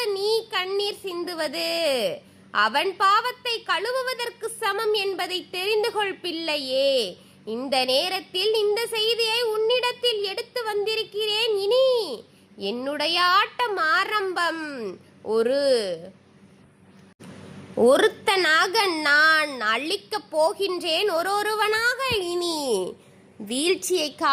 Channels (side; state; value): both; identical; correlation 1.00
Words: நீ கண்ணீர் சிந்துவது அவன் பாவத்தை கழுவுவதற்கு சமம் என்பதை தெரிந்து கொள் பிள்ளையே. இந்த நேரத்தில் இந்த செய்தியை உன்னிடத்தில் எடுத்து வந்திருக்கிறேன். இனி என்னுடைய ஆட்டம் ஆரம்பம். ஒருத்தனாக நான் அழிக்கப் போகின்றேன், ஒருவனாக. இனி வீழ்ச்சியை